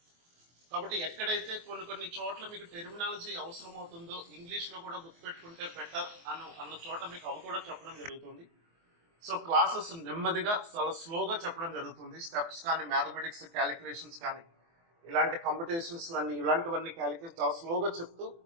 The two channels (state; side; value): late; left; 24 ms